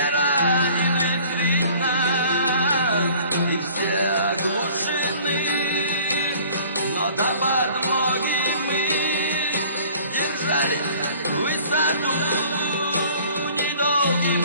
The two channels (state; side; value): inverted; both; correlation -0.51